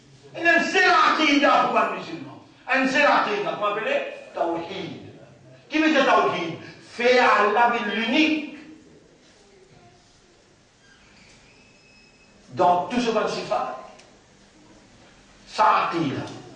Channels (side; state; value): both; identical; correlation 1.00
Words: Et c'est l'aqida pour un musulman. Et c'est l'aqida, vous m'appelez? Tawhid. Qui veut dire Tawhid? Fait Allah l'unique. Dans tout ce qu'on s'y fait. Ça aqida.